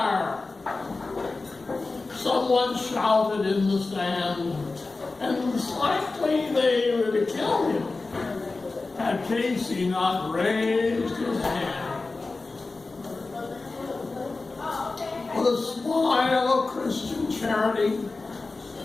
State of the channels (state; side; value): quieter; right; 3.6 dB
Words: Someone shouted in the stand, and likely they would have killed him had Casey not raised his hand. With a smile of Christian charity,